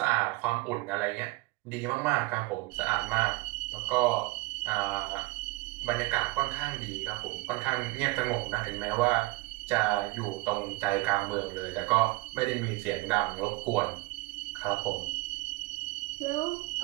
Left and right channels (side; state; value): left; quieter; 22.1 dB